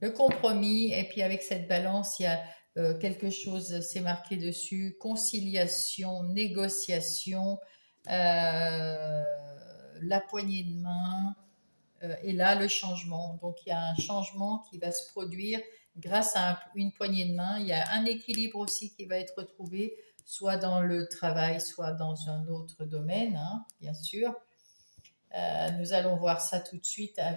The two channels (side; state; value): both; inverted; correlation -1.00